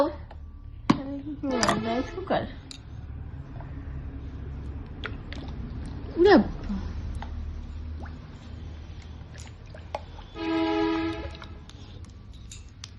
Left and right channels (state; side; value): identical; both; correlation 1.00